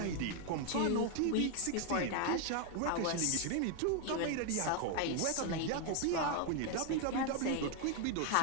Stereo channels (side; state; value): both; different; correlation 0.01